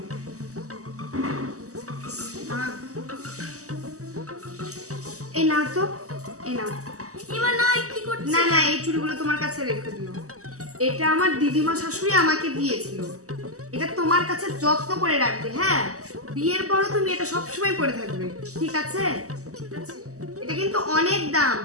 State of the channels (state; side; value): late; left; 0.66 ms